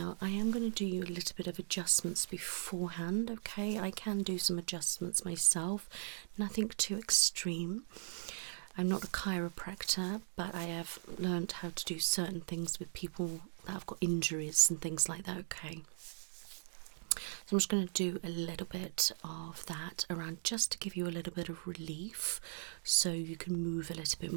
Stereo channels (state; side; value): silent; left; digital silence